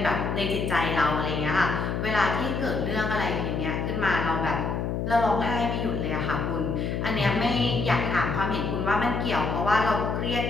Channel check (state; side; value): noise; left; hum, 1 dB below the sound